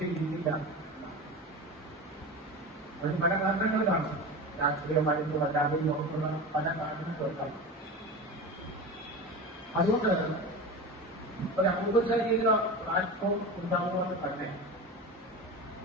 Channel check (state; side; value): normal; both; correlation 0.28